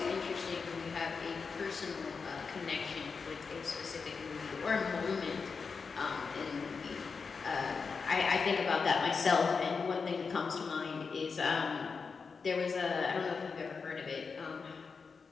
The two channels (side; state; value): right; quieter; 5.1 dB